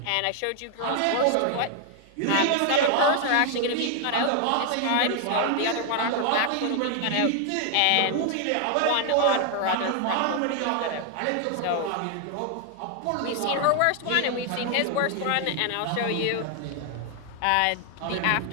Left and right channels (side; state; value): both; different; correlation 0.00